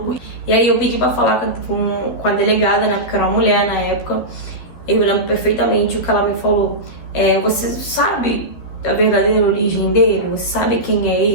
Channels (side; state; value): right; late; 12 ms